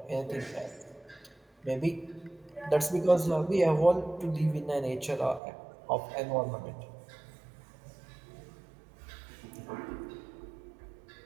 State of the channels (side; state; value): left; drops out; at 5.4 s